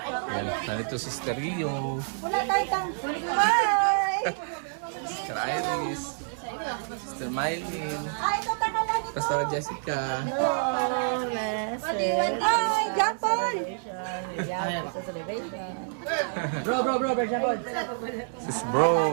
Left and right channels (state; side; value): silent; left; 59 dB below the other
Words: Yan, nandito si Sister Rio, Sister Iris, Sister Mylene, Pastor Jessica. Ay, Japon! Sis